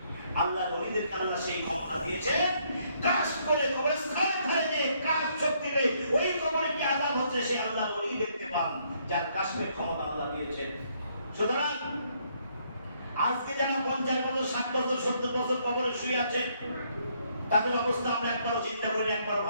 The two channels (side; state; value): both; inverted; correlation -0.70